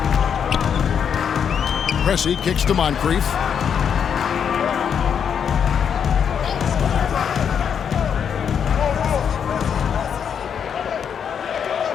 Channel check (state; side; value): quieter; right; 7.7 dB